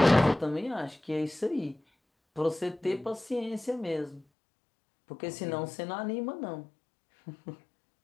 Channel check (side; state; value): right; drops out; at 4.2 s